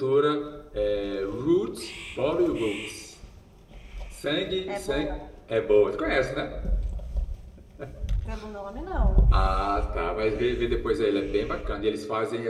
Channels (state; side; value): identical; both; correlation 1.00